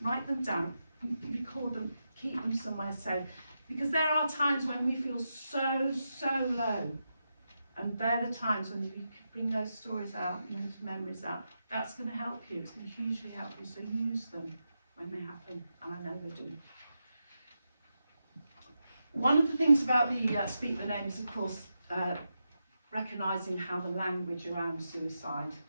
Write them down, record them, keep them somewhere safe. Because there are times when we feel so low. And they're the times when you bring those stories out, those memories out. That's going to help you. It's going to hugely help you. So use them when they happen. And I know they do. One of the things about the Speak the Names, of course, recognising how the language around suicide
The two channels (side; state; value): both; inverted; correlation -0.88